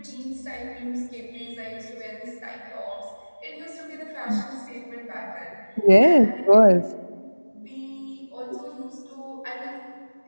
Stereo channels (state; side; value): inverted; both; correlation -1.00